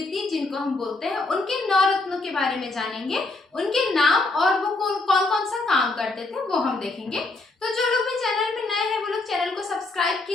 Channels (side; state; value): right; quieter; 3.2 dB